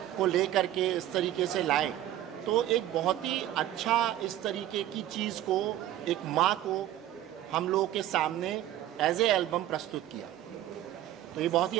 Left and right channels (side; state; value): left; quieter; 12.8 dB